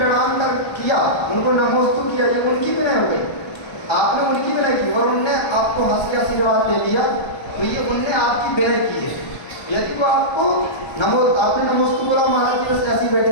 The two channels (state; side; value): late; right; 1.3 ms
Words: कर किया, उनको नमोस्तु किया, ये उनकी विनय हो गई, आपने उनकी विनय की, और उनने आपको हंस के आशीर्वाद दे दिया, तो ये उनने आपकी विनय की है। यदि वो आपको आपने नमोस्तु बोला, महाराज जी बस ऐसे ही बैठे